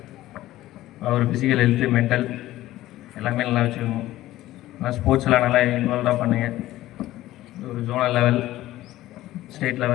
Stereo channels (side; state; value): right; quieter; 15.5 dB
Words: ஒரு ஃபிசிக்கல் ஹெல்த்து, மென்டல் எல்லாமே நல்லா வச்சுக்கணும். நல்லா ஸ்போர்ட்ஸ்லாம் நல்லா இன்வால்வாக பண்ணுங்கள். ஒரு ஜோனல் லெவல், ஸ்டேட்